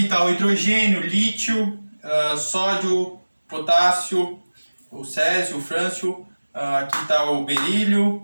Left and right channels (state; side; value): inverted; both; correlation -1.00